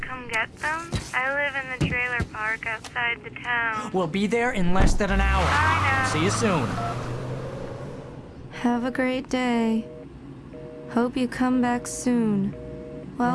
come get them? I live in the trailer park outside the town. We'll be there in less than an hour. I know. See you soon. Have a great day. Hope you come back soon.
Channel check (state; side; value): identical; both; correlation 1.00